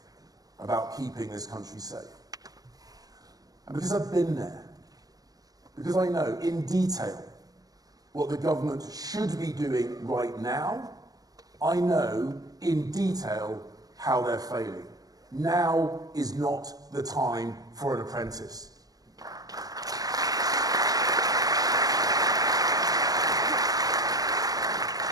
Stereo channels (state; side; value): late; left; 0.18 ms